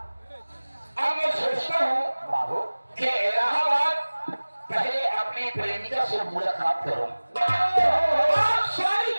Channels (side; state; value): both; inverted; correlation -1.00